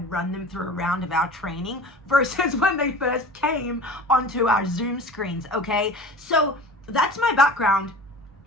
run them through a round of our training versus when they first came onto our Zoom screens, okay? So that's my background.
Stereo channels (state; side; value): normal; both; correlation 0.38